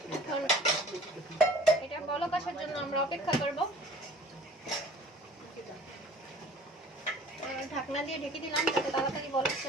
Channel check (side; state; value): both; normal; correlation 0.48